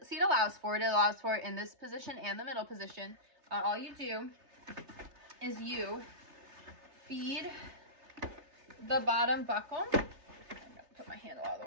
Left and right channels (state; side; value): late; left; 3.3 ms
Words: allows for it, in this position and the middle position. all you do is you feed the bottom buckle. I'm gonna put my handle out of the